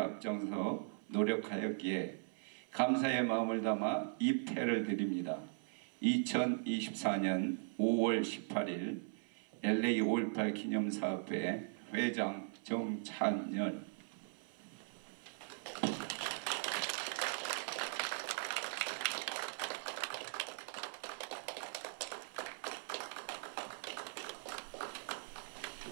노력하였기에 감사의 마음을 담아 이 패를 드립니다. 2024년 5월 18일 LA 5.18 기념사업회 회장 정찬열.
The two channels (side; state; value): left; silent; 51 dB below the other